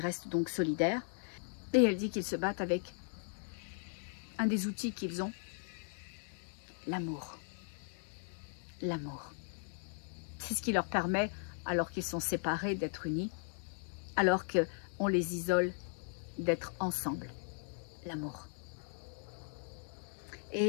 restent donc solidaires. Et elle dit qu'ils se battent avec un des outils qu'ils ont, l'amour. L'amour. C'est ce qui leur permet, alors qu'ils sont séparés, d'être unis, alors qu'on les isole, d'être ensemble. L'amour.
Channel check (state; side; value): silent; right; 53 dB below the other